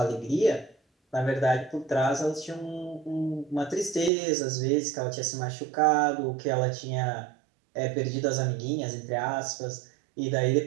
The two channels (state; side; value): drops out; left; at 4.1 s